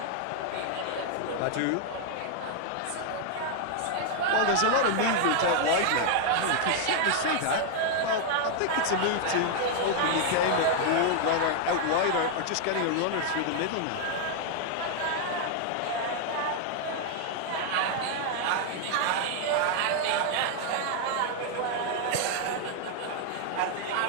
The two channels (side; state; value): both; different; correlation 0.00